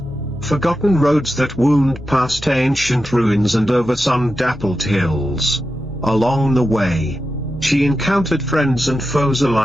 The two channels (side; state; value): both; normal; correlation 0.90